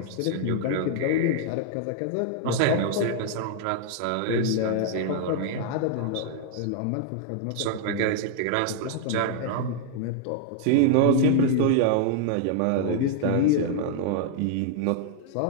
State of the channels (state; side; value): different; both; correlation 0.00